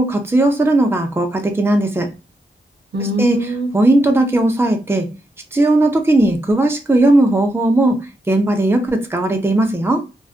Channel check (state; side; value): normal; both; correlation 0.83